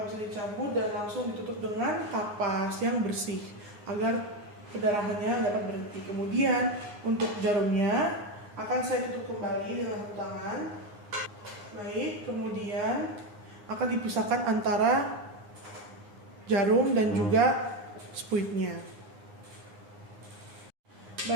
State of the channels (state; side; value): late; left; 9.7 ms